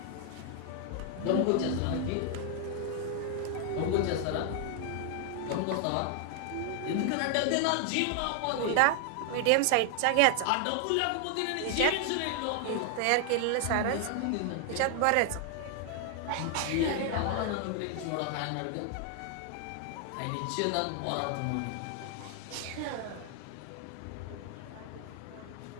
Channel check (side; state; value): both; different; correlation 0.00